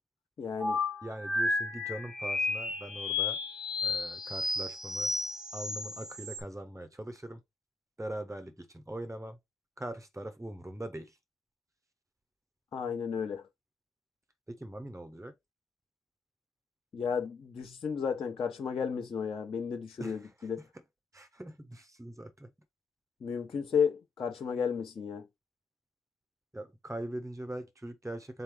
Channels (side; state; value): right; quieter; 3.7 dB